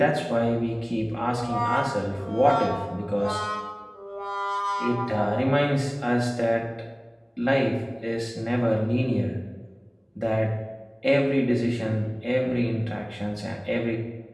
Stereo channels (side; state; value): both; identical; correlation 1.00